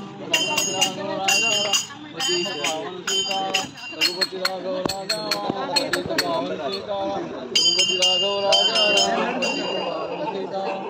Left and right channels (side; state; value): both; identical; correlation 1.00